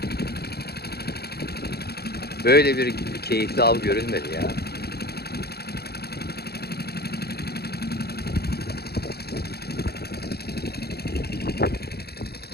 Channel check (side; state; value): right; late; 0.46 ms